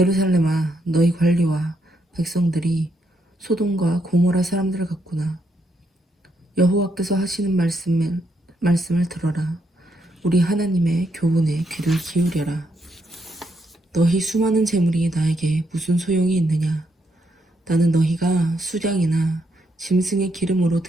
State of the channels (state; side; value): normal; both; correlation 0.77